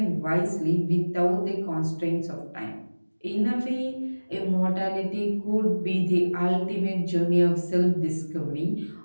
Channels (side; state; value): both; inverted; correlation -1.00